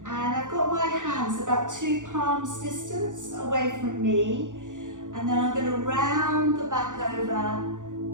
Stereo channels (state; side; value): late; left; 0.87 ms